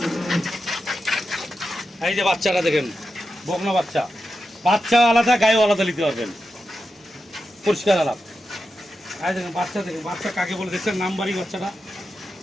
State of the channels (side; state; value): both; normal; correlation 0.90